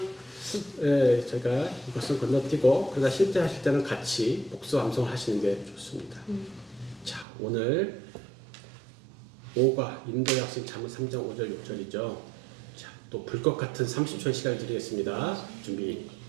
제가 이것을 건너뛰고 그러다 실제 하실 때는 같이 복습 암송 하시는 게 좋습니다. 자, 오늘 5가 인도의 학신 잠언 3장 5절 6절이죠. 자, 또 불꽃 같은 30초의 시간을 드리겠습니다. 준비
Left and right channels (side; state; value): left; drops out; at 7.2 s